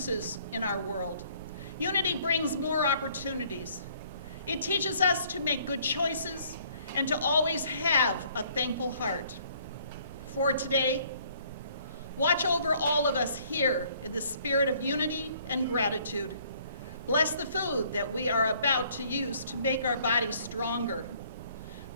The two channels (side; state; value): both; inverted; correlation -0.61